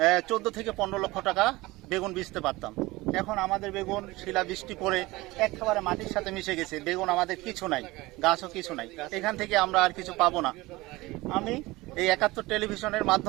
14 থেকে 15 লক্ষ টাকা বেগুন বেচতে পারতাম। এখন আমাদের বেগুন শিলাবৃষ্টি পড়ে একেবারে মাটির সাথে মিশে গেছে, বেগুন আমাদের কিছু নাই, গাছও কিছু নাই। এখান থেকে আমরা আর কিছু পাবো না। আমি এই 71 টেলিভিশনের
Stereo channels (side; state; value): left; quieter; 20.5 dB